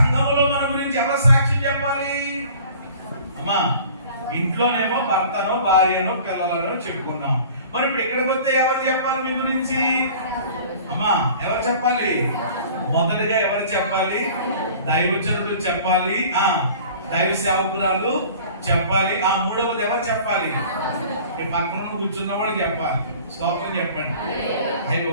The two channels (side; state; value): both; inverted; correlation -0.47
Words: మన గురించి ఎవరు సాక్ష్యం చెప్పాలి? అమ్మా ఇంట్లోనేమో భర్తనో భార్యనో పిల్లలనో చెప్పుకున్నాం, మరి ఇప్పుడు ఇక్కడికి వస్తే ఎవరు చెప్పాలి మీ గురించి? అమ్మా ఎవరు చెప్పాలి? మొదటిగా ఎవరు చెప్పాలి? దైవజనుడు చెప్పాలి, దైవ సేవకురాలు చెప్పాలి, మూడవది ఎవరు చెప్పాలి? పక్కన కూర్చున్న వాళ్ళు చెప్పాలి. స్తోత్రం చెప్పండి. అయ్యో